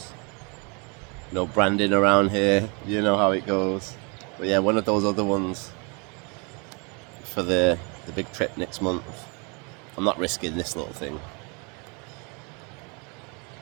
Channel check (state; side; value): quieter; left; 32.7 dB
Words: No branding around here, you know how it goes. But yeah, one of those other ones for the big trip next month. I'm not risking this little thing.